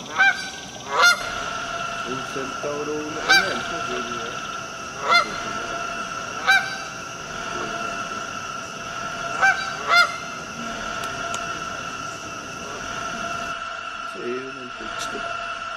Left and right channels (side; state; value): both; identical; correlation 1.00